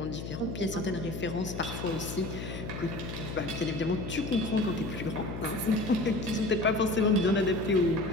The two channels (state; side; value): noise; left; hum, 7 dB below the sound